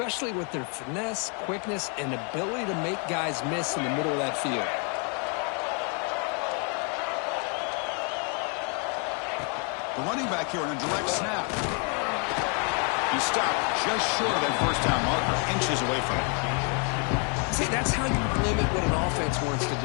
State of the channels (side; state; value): right; quieter; 38.2 dB